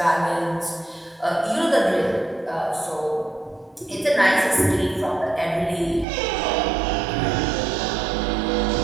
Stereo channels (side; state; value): left; drops out; at 6.1 s